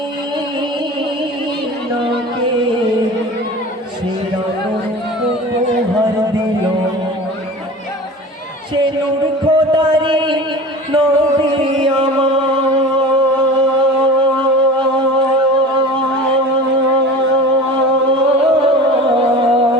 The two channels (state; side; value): normal; both; correlation 0.35